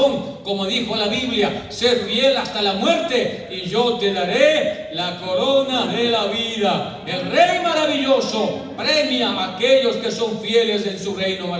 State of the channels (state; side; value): identical; both; correlation 1.00